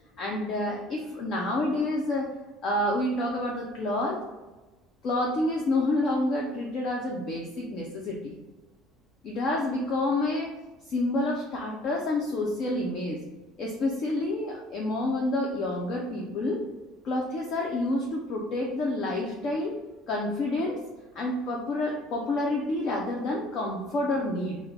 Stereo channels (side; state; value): both; normal; correlation 0.55